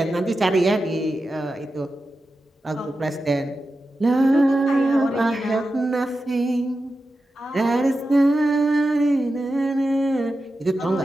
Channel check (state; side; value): normal; both; correlation 0.91